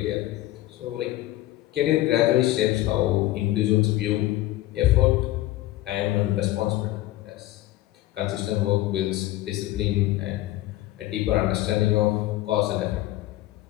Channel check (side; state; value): right; quieter; 16.0 dB